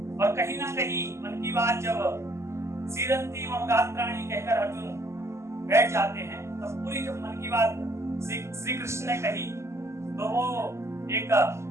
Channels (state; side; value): late; left; 0.13 ms